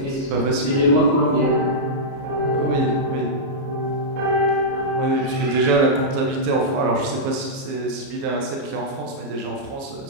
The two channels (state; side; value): late; left; 29 ms